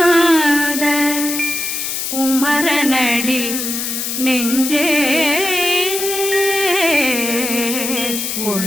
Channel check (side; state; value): left; noise; hiss, 3 dB below the sound